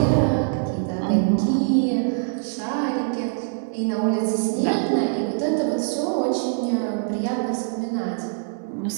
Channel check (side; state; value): left; silent; digital silence